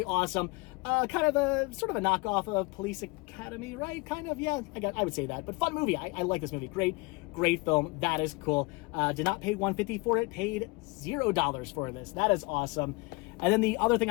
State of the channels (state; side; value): quieter; right; 26.4 dB